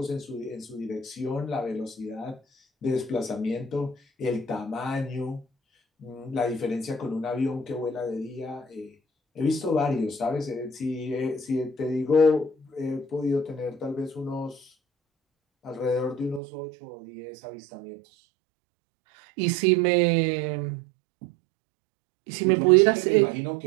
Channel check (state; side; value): drops out; left; at 16.4 s